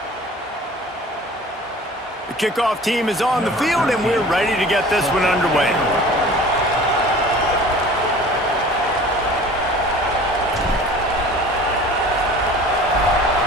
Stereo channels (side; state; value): both; normal; correlation 0.44